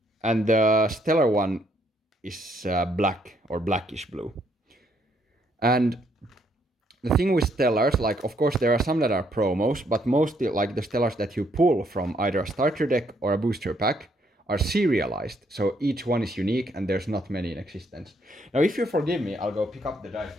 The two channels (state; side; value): normal; both; correlation 0.71